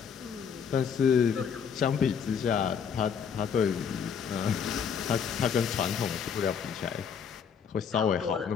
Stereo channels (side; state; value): right; quieter; 7.1 dB